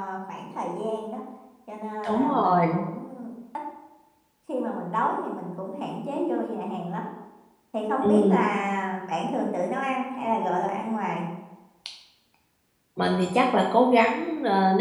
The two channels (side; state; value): both; identical; correlation 1.00